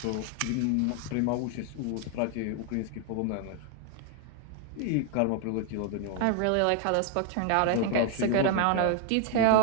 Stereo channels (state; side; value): different; both; correlation 0.00